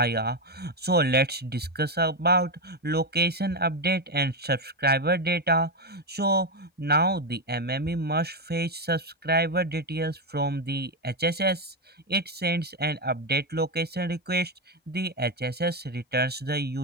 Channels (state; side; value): normal; both; correlation 0.08